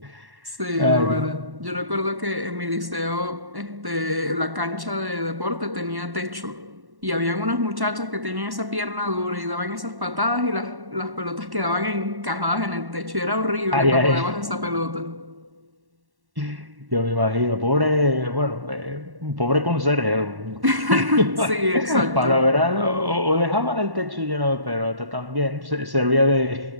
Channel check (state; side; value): late; left; 1.1 ms